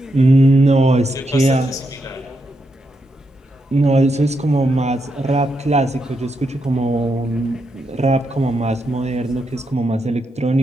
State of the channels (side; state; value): both; normal; correlation 0.82